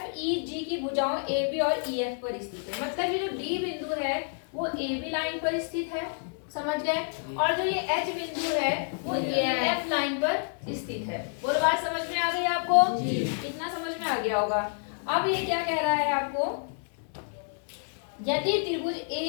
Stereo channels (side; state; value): right; silent; 59 dB below the other